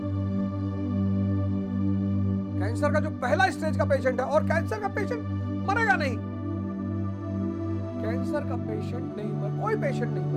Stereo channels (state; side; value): identical; both; correlation 1.00